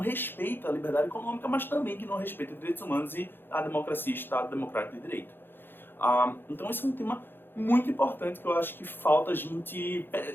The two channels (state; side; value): late; right; 0.10 ms